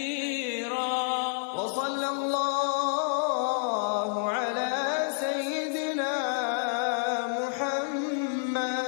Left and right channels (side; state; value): right; silent; digital silence